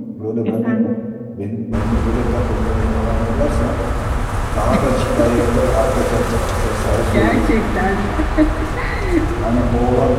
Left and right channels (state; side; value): identical; both; correlation 1.00